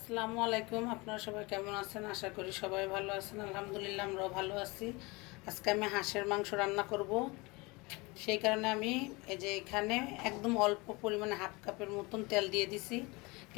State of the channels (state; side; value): quieter; right; 25.3 dB